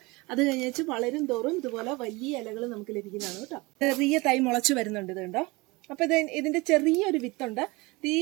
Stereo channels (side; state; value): left; quieter; 23.9 dB